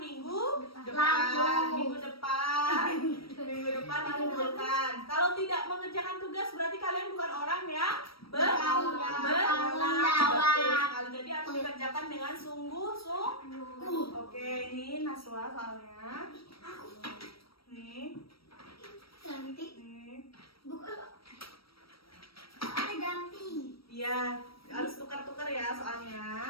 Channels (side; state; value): right; late; 0.75 ms